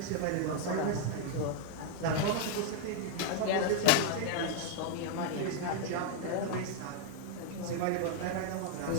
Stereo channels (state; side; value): different; both; correlation 0.00